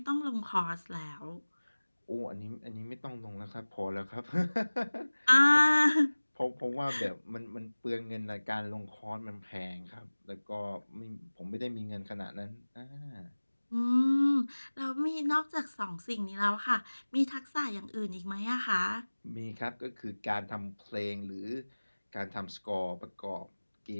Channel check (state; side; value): inverted; both; correlation -1.00